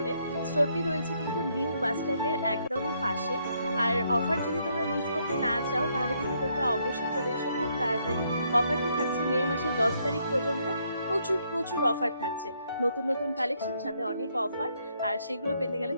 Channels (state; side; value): inverted; both; correlation -0.73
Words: স্টোরটি রয়েছে কিন্তু নিউ বাস স্ট্যান্ডের একদমই পাশে। আর অফার যদি তোমরা মিস করতে না চাও তাহলে কিন্তু তোমরা অবশ্যই চলে এসো খুব তাড়াতাড়ি। অফারটি থাকছে মে মাসের 10 তারিখ পর্যন্ত। প্রচুর প্রচুর অফার থাকছে, নতুন নতুন কালেকশন, সাথে অনেক অফার। আর সেগুলো পেতে গেলে